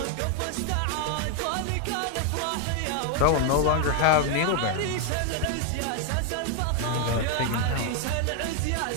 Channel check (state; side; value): different; both; correlation 0.01